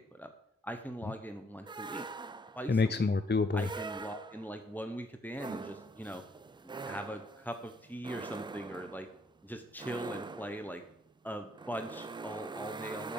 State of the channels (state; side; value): normal; both; correlation 0.69